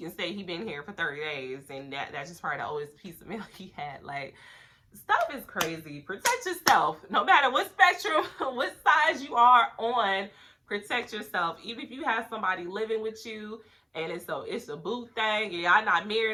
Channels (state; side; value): identical; both; correlation 1.00